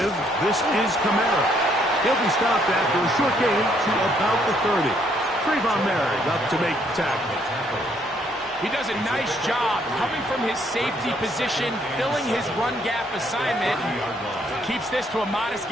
this is Kamara. He'll be stopped after a short gain to about the 30. Trayvon Merrick up to make the tackle. He does a nice job coming from his safety position, filling his run gap assignment. Keeps this to a modest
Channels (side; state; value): both; normal; correlation 0.69